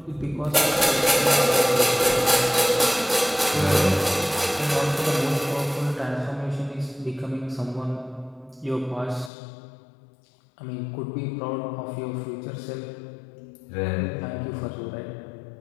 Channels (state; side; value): drops out; right; at 9.3 s